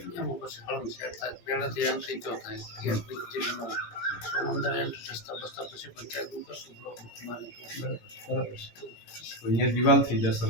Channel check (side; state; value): right; late; 17 ms